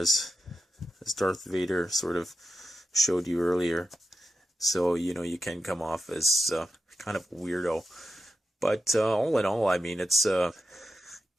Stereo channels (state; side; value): normal; both; correlation 0.89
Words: Darth Vader sort of showed you earlier. So, you know, you can come off as kind of a weirdo, but all in all, I mean, it